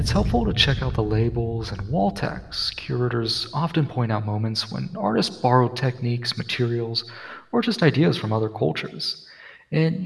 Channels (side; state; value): both; identical; correlation 1.00